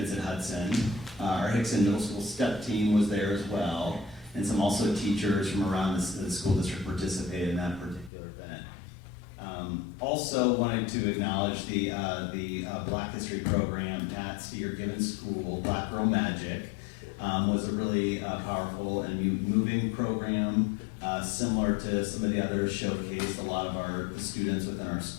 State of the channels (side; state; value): right; drops out; at 8.1 s